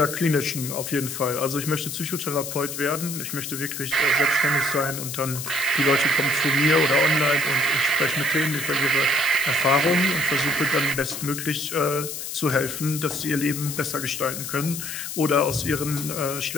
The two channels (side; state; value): left; noise; hiss, 7 dB below the sound